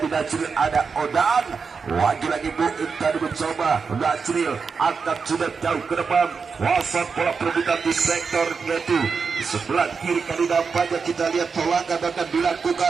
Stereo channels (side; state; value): left; quieter; 5.3 dB